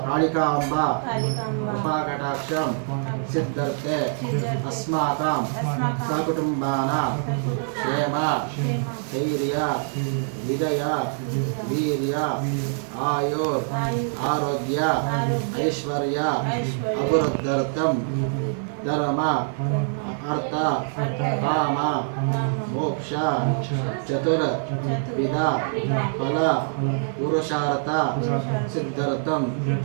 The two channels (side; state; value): left; silent; digital silence